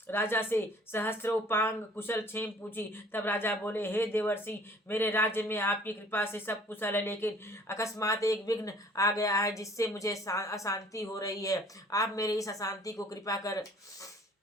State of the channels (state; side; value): normal; both; correlation 0.53